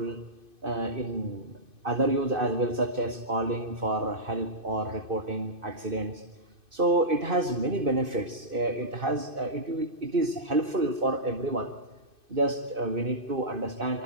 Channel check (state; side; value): late; left; 2.5 ms